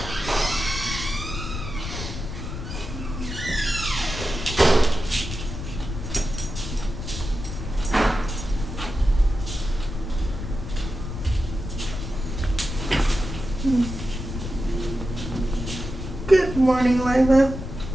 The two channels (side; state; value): left; noise; rumble, 7 dB below the sound